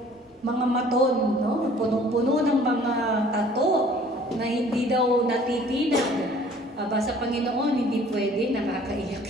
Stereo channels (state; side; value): normal; both; correlation 0.53